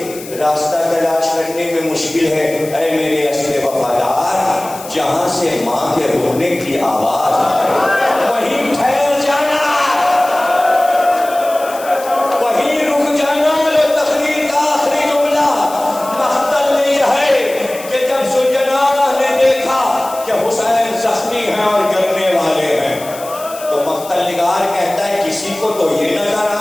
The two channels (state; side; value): noise; left; hiss, 15 dB below the sound